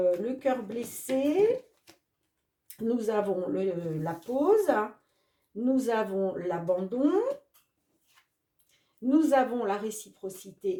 cœur blessé. Nous avons la pause. Nous avons l'abandon. Nous avons la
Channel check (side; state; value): both; identical; correlation 1.00